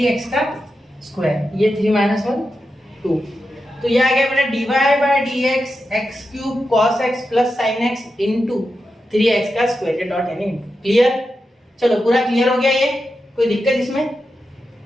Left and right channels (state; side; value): normal; both; correlation 0.89